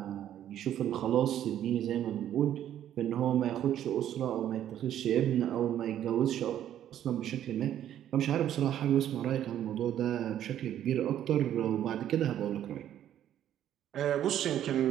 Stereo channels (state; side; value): quieter; left; 11.1 dB